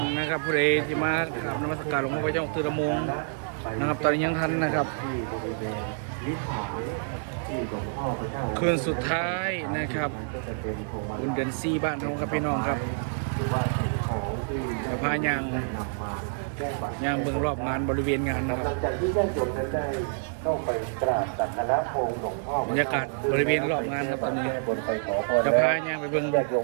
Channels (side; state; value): left; silent; digital silence